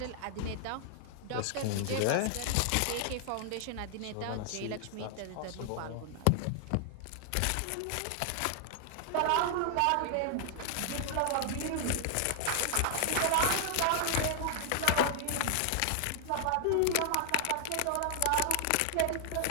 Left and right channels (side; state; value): both; different; correlation 0.00